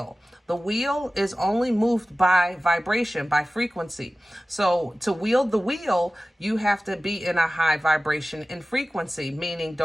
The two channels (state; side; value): normal; both; correlation 0.96